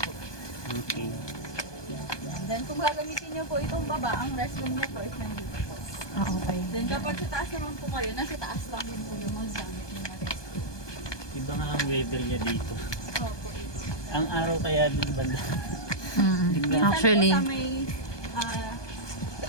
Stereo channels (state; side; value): late; right; 1.2 ms